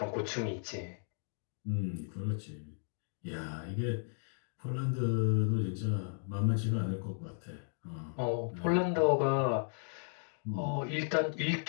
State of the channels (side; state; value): right; silent; digital silence